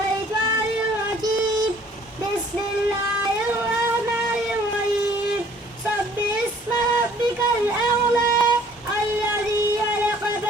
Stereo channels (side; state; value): both; normal; correlation 0.56